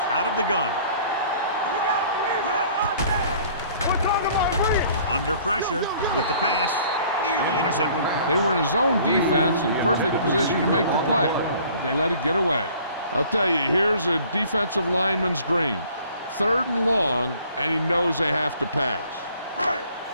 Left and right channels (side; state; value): both; inverted; correlation -0.54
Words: out of the gun. Under pressure with the pass. Nearly intercepted. They were in a zone defense in perfect position to make the play, but they let it get away. I'll tell you, here's a defensive lineman's dream. 3rd and long, and he knows they have to pass.